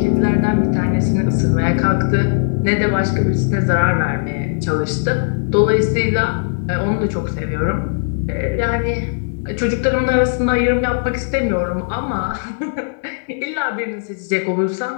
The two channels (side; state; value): right; silent; digital silence